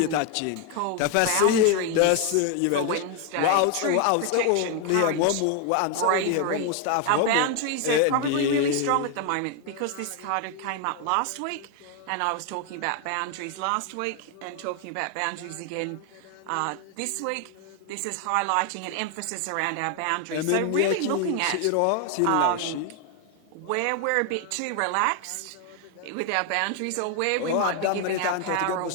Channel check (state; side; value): different; both; correlation 0.01